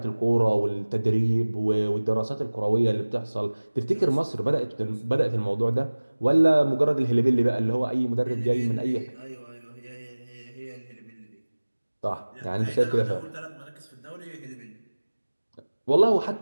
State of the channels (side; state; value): both; inverted; correlation -1.00